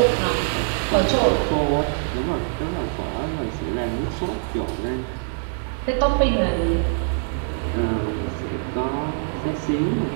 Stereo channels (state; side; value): silent; left; digital silence